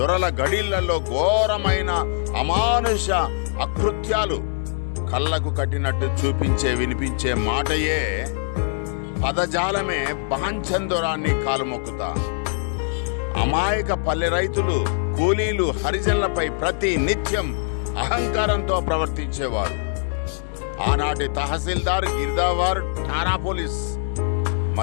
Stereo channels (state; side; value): silent; right; digital silence